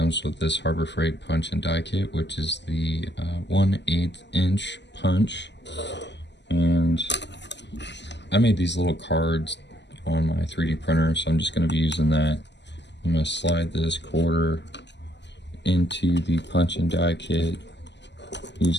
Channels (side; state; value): right; late; 0.51 ms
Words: with this Harbor Freight punch and die kit, which is the 1/8 inch punch. And I made these little cards on my 3D printer, so I'm just going to be using that. I'm going to slide this quarter into the punch and die kit